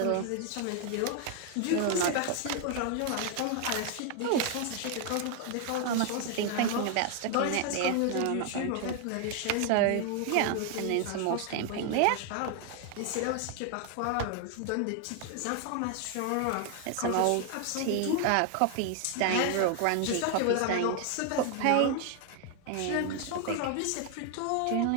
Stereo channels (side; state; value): both; different; correlation 0.00